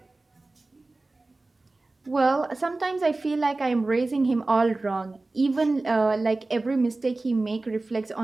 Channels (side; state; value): left; quieter; 3.2 dB